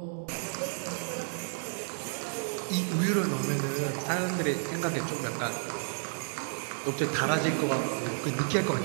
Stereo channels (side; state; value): left; silent; digital silence